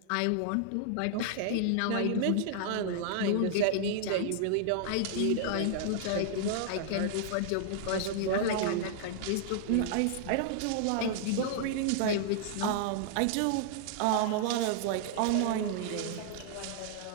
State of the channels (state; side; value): different; both; correlation -0.01